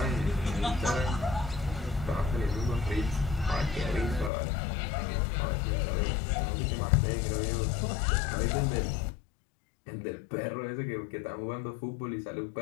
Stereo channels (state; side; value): drops out; right; at 4.3 s